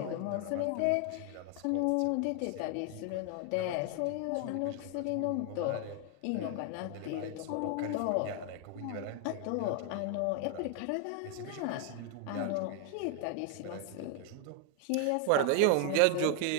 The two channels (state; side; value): different; both; correlation 0.00